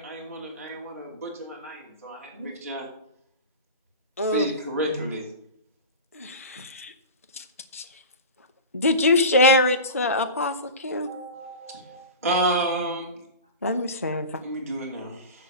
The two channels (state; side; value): inverted; both; correlation -0.30